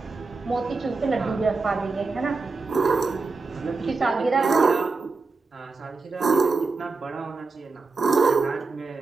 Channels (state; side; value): quieter; left; 4.0 dB